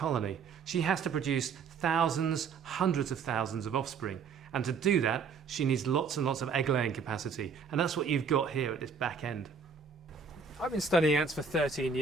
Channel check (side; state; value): left; quieter; 5.7 dB